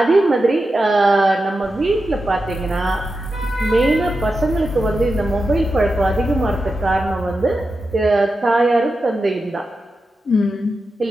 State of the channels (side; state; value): both; normal; correlation 0.90